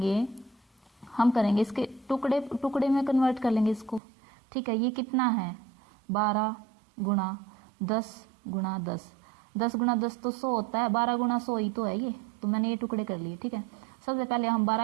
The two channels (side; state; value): left; drops out; at 4.0 s